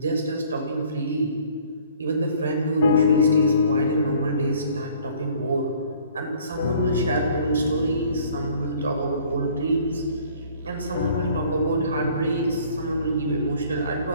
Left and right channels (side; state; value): both; inverted; correlation -0.55